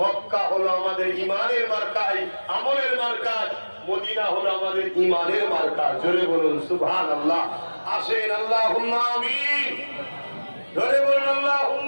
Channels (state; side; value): inverted; both; correlation -1.00